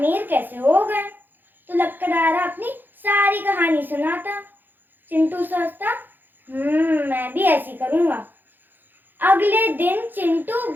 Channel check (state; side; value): late; left; 0.090 ms